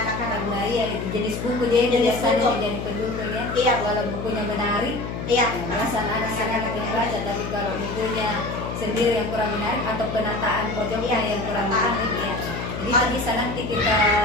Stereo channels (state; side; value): noise; left; hum, 6 dB below the sound